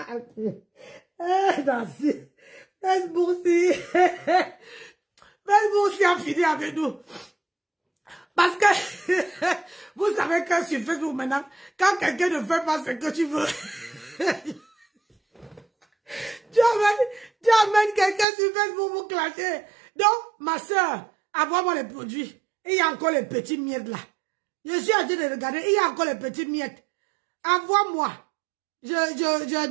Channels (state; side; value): drops out; left; at 18.2 s